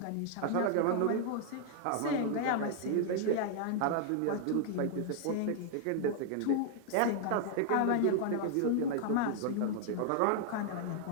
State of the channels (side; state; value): both; different; correlation 0.00